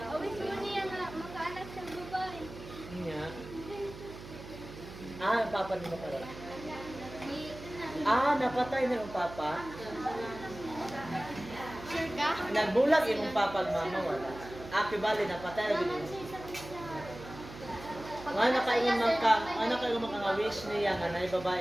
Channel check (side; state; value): right; noise; hum, 14 dB below the sound